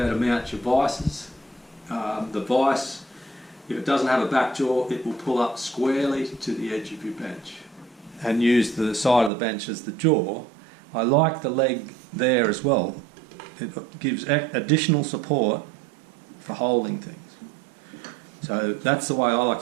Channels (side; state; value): left; drops out; at 9.3 s